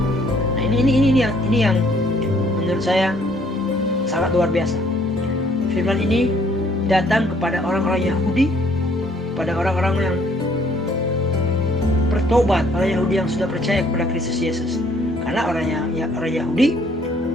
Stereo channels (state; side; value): normal; both; correlation 0.63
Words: Nah, ini yang menurut saya sangat luar biasa. Firman ini datang kepada orang-orang Yahudi, kepada orang-orang yang bertobat, orang Yahudi yang sudah percaya kepada Kristus Yesus. Karena orang Yahudi